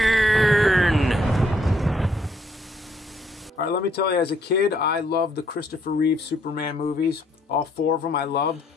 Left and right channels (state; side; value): normal; both; correlation 0.68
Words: All right, let me tell you, as a kid, I loved the Christopher Reeve Superman movies. All 4 of them I loved.